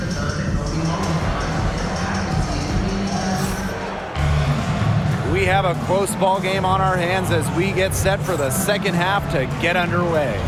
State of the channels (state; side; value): identical; both; correlation 1.00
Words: We have a close ball game on our hands as we get set for the second half to get underway.